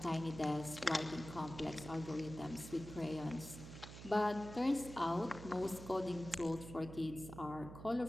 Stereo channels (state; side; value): noise; right; hum, 12 dB below the sound